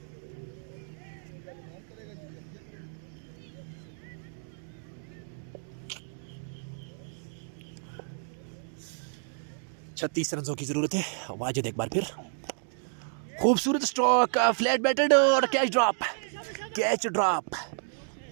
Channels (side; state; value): left; silent; digital silence